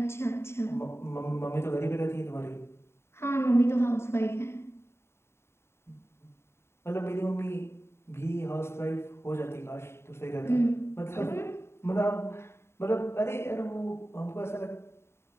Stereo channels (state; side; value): late; right; 0.12 ms